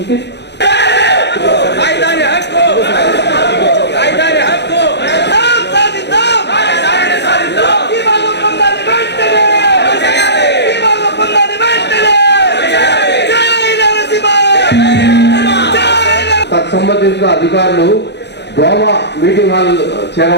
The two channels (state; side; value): late; right; 0.50 ms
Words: ఓకే, సంబంధించిన అధికారులు గోవా మీటింగ్ హాల్